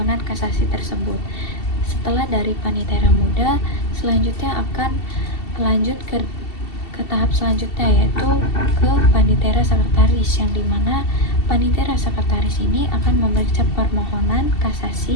kasasi tersebut. Setelah dari panitera muda, selanjutnya akan lanjut ke tahap selanjutnya, yaitu ke panitera sekretaris, yang dimana panitera sekretaris ini akan memeriksa permohonan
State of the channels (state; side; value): late; right; 2.7 ms